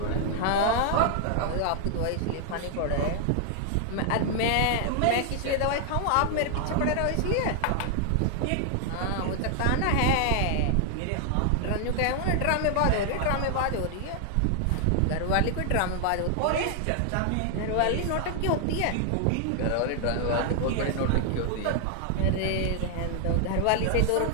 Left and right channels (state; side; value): different; both; correlation 0.00